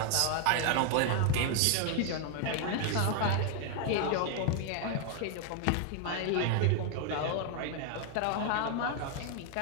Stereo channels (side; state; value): both; different; correlation 0.00